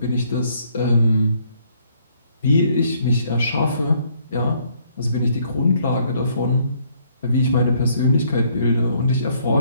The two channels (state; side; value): inverted; both; correlation -0.67